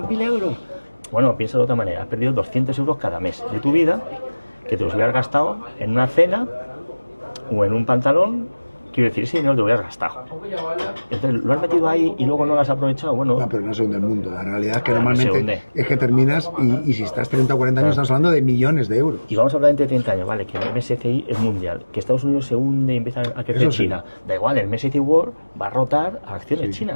euros. Bueno, piensa de otra manera, has perdido 200 euros cada mes de tu vida que te los hubieras gastado en una cena o en un pantalón. Quiero decir, ese dinero te lo hubieras gastado. Entonces, ¿lo has metido ahí y luego no lo has aprovechado? Bueno, no, pero no se hunde el mundo. La realidad es que normalmente es que terminas y si estás 30 o 40 años estamos hablando de millones de euros. Y vamos a hablar entre 30 años, vale, que el MSCI es mundial, que Estados Unidos se hunde y empieza a crecer China. Da igual, el MSCI World va a rotar a acciones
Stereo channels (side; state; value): both; inverted; correlation -1.00